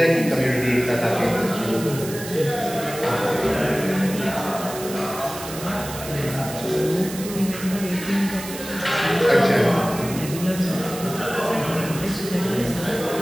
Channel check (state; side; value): noise; right; hiss, 11 dB below the sound